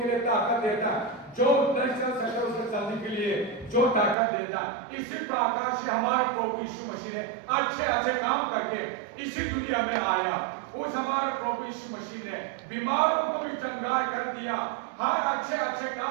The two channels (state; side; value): drops out; left; at 4.2 s